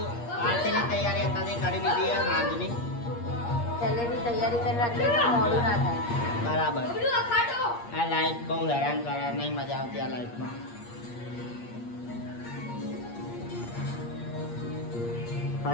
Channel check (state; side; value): late; right; 8.5 ms